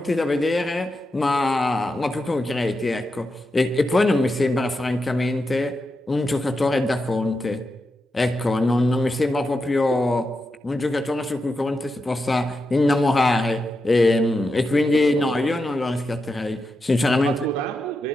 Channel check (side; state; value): both; normal; correlation 0.88